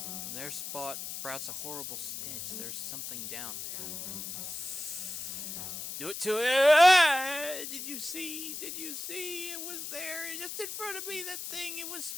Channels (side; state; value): left; noise; hiss, 6 dB below the sound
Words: From their spot sprouts a horrible stench. There's something down there. Do it to it! Ah! Did you see? Did you see? It was there, just in front of me. That thing, it was